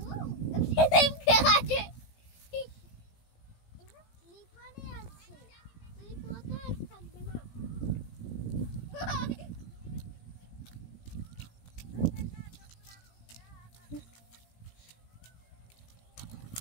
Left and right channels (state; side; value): late; right; 17 ms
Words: আছে লিপানে আছে, লিপাতে থাকবে না।